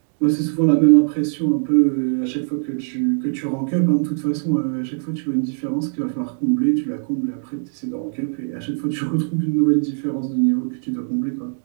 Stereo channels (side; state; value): left; silent; digital silence